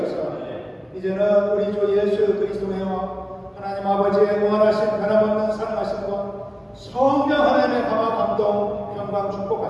이제는 우리 주 예수 그리스도의 하나님 아버지의 무한하신 변함없는 사랑하심과 성령 하나님의 감화 감동 평강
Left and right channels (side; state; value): both; identical; correlation 1.00